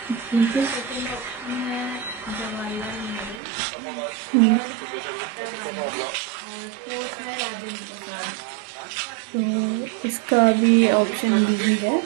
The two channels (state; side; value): drops out; left; at 3.4 s